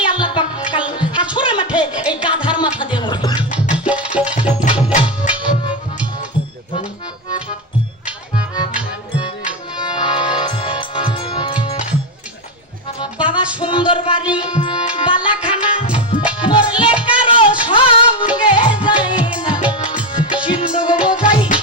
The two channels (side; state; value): both; normal; correlation 0.12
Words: আল্লাহ পাক কাল হাসরের মাঠে এই গাধার মাথা দিয়ে মরবে বাবা সুন্দর বাড়ি বালাখানা মরলে কারো সঙ্গে যায় না সিন্ধু বোঝাই